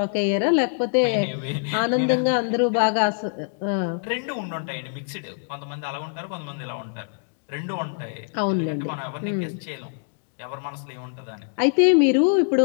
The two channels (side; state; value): right; silent; digital silence